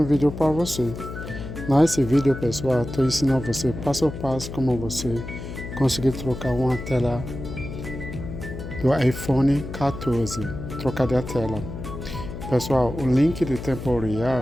vídeo para você. Nesse vídeo, pessoal, estou ensinando você passo a passo como você conseguir trocar uma tela do iPhone 14, trocar de tela. Pessoal, o link de tempo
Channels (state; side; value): noise; left; hum, 9 dB below the sound